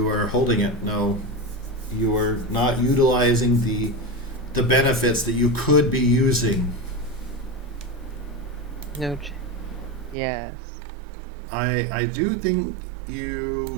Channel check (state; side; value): drops out; left; at 10.2 s